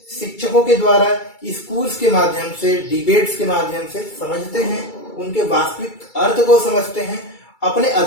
शिक्षकों के द्वारा, स्कूल्स के माध्यम से, डिबेट्स के माध्यम से समझते हैं, उनके वास्तविक अर्थ को समझते हैं, अपने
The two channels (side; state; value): right; late; 2.3 ms